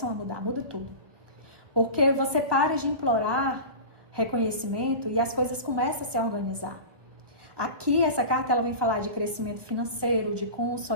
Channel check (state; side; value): late; left; 1.2 ms